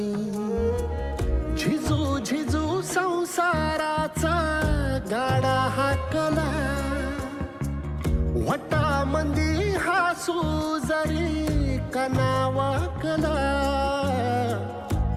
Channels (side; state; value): both; identical; correlation 1.00